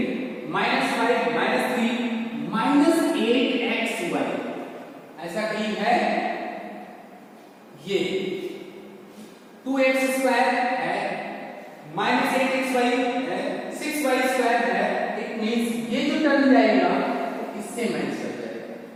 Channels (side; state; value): both; identical; correlation 1.00